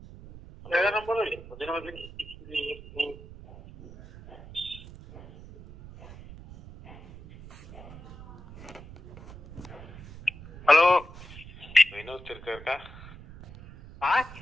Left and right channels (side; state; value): right; noise; rumble, 16 dB below the sound